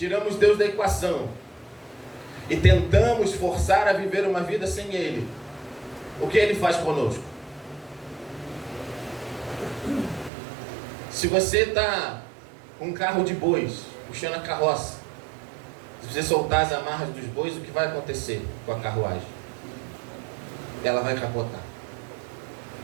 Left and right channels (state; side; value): drops out; left; at 10.3 s